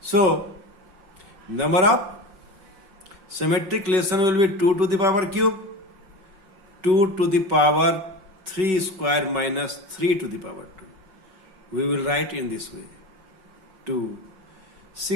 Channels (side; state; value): left; late; 5.3 ms